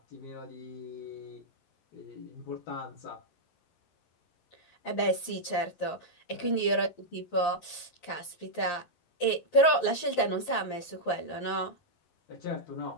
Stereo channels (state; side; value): late; right; 11 ms